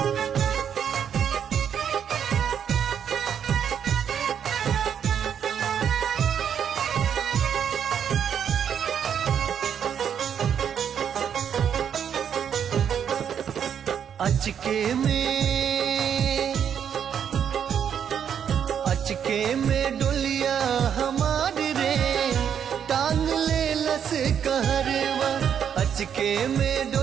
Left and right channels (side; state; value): left; quieter; 8.4 dB